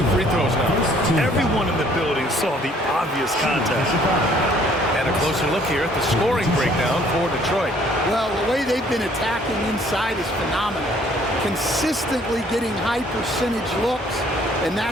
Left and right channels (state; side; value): normal; both; correlation 0.60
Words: free throws now. Everyone in the building saw the obvious contact. And a closer look here at the scoring breakdown for Detroit. Well, the way they've been attacking inside is phenomenal. Consistently getting high percentage looks, and